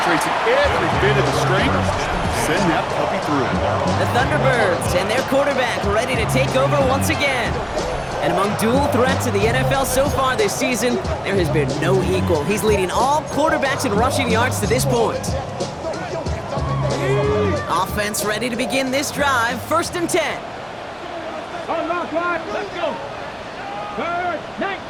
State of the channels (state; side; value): identical; both; correlation 1.00